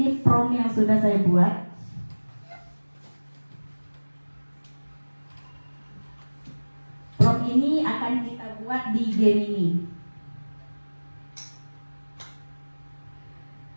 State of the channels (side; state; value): both; inverted; correlation -1.00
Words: prompt yang sudah saya buat. buat di Gemini.